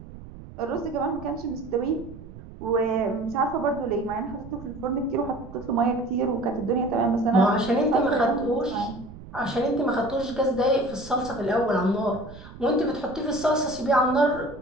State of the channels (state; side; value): noise; right; rumble, 16 dB below the sound